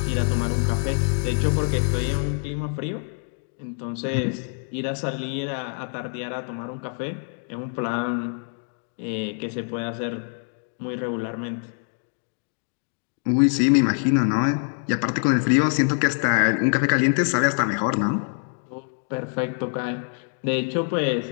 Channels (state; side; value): silent; right; 57 dB below the other